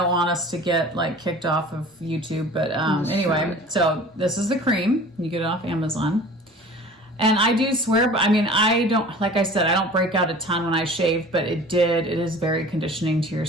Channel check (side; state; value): both; normal; correlation 0.43